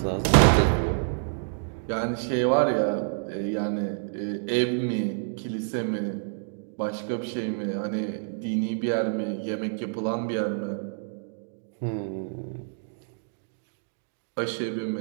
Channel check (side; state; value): left; silent; digital silence